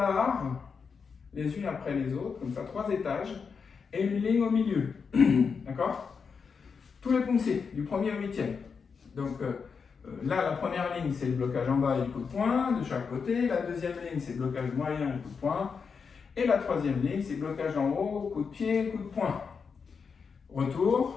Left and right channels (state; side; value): quieter; right; 5.7 dB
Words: les unes après les autres, comme ça, 3 étages, et une ligne au milieu. D'accord? Tous les pouncés, du 1er au 8e. Donc, là, la première ligne, c'est le blocage en bas et le coup de poing de chaque côté. La deuxième ligne, c'est le blocage moyen et le coup de poing. Et la troisième ligne, c'est blocage en haut, coup de pied, coup de poing.